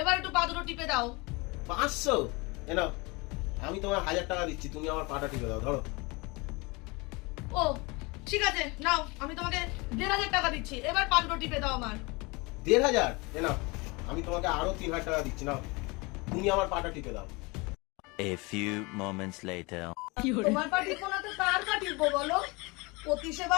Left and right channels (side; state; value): right; quieter; 26.4 dB